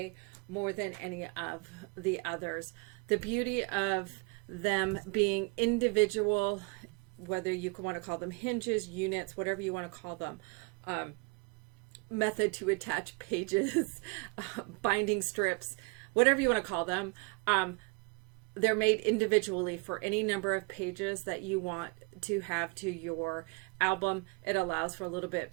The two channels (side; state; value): left; quieter; 29.6 dB